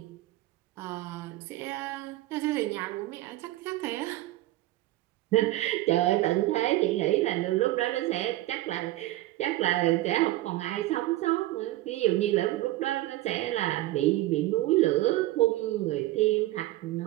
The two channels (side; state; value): left; quieter; 16.6 dB